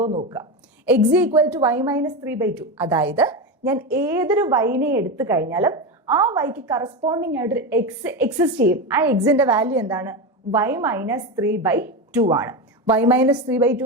എന്ന് നോക്കുക. X equal to y - 3/2. അതായത് ഞാൻ ഏതൊരു വൈനെ എടുത്തു കഴിഞ്ഞാലും ആ വൈക്ക് കറസ്പോണ്ടിങ് ആയിട്ടൊരു എക്സ് എക്സിസ്റ്റ് ചെയ്യും. ആ എക്സിന്റെ വാല്യൂ എന്താണ്? y - 3/2 ആണ്. y -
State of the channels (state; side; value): normal; both; correlation 0.17